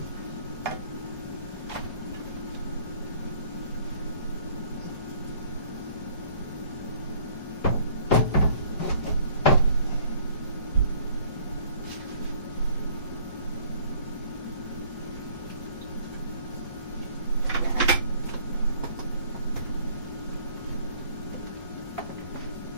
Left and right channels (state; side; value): inverted; both; correlation -0.56